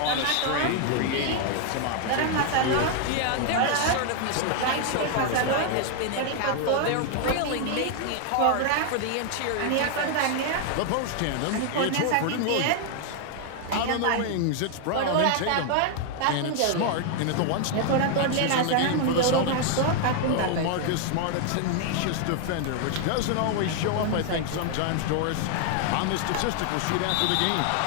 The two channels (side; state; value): both; different; correlation 0.00